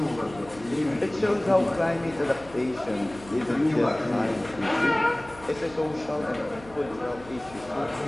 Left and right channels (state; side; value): noise; left; hum, 20 dB below the sound